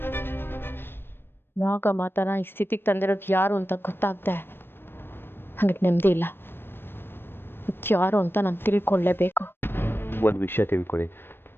ನಾಗ ಮಾತನ ಈ ಸ್ಥಿತಿಗೆ ತಂದಿರೋದು ಯಾರು ಅಂತ ಗೊತ್ತಾಗ್ದೆ ನನಗೆ ನೆಮ್ಮದಿ ಇಲ್ಲ. ಯಾರು ಅಂತ ನಾನು ತಿಳ್ಕೊಳ್ಳೇಬೇಕು. ಒಂದು ವಿಷಯ ತಿಳ್ಕೊಳ್ಳಿ,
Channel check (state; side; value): late; right; 0.10 ms